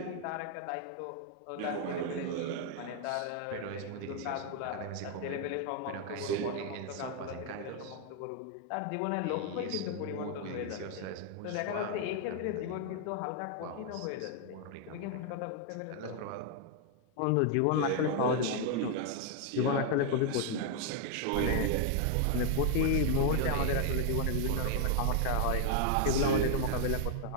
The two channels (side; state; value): both; different; correlation 0.00